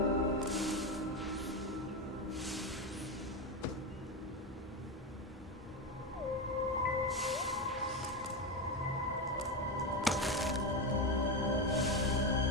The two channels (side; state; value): both; normal; correlation 0.14